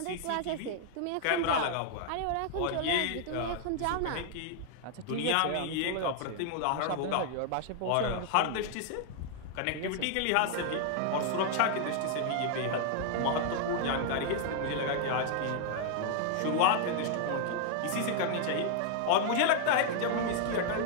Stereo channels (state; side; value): different; both; correlation 0.00